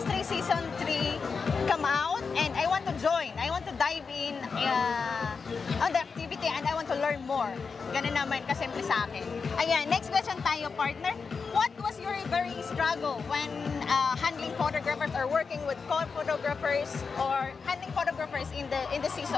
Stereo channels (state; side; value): quieter; right; 5.1 dB